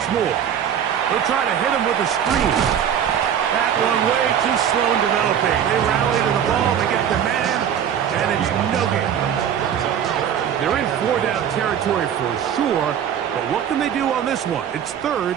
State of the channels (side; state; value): left; quieter; 9.0 dB